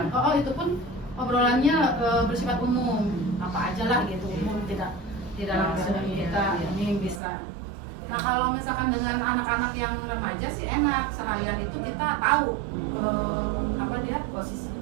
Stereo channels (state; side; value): drops out; left; at 7.2 s